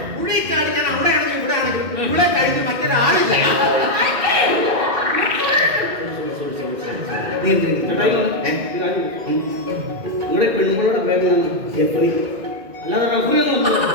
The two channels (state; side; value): late; left; 2.1 ms